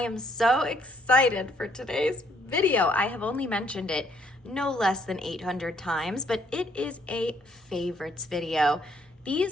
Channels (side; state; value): both; normal; correlation 0.67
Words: so excited for today's video. I have only mentioned it no less than 800 times, but it is a favorites video.